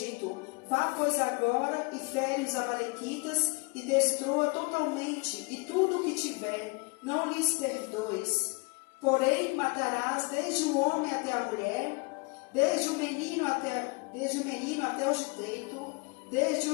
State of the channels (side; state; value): right; quieter; 28.9 dB